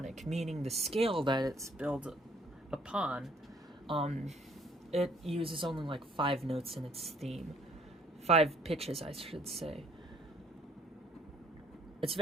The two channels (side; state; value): both; normal; correlation 0.61